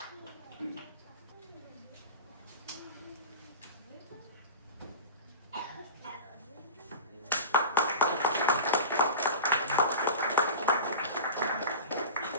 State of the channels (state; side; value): inverted; both; correlation -0.32